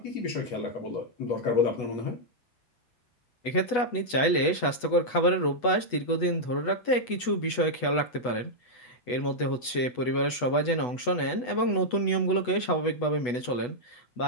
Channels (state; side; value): late; right; 8.1 ms